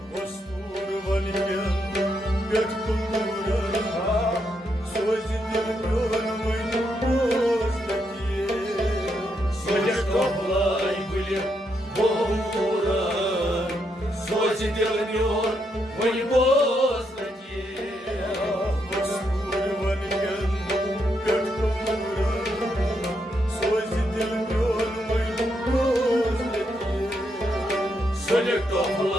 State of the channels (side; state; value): both; normal; correlation 0.79